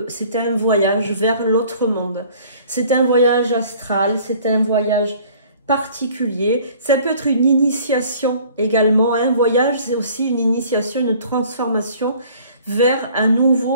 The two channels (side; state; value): both; inverted; correlation -0.53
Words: un voyage vers l'autre monde. C'est un voyage astral, c'est un voyage particulier. Ça peut être une initiation également. Un voyage, c'est aussi une initiation, une transformation vers un